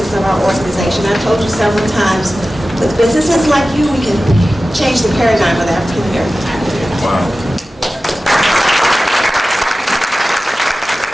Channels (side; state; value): both; normal; correlation 0.95